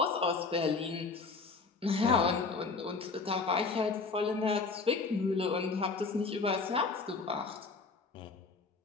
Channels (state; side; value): quieter; right; 4.3 dB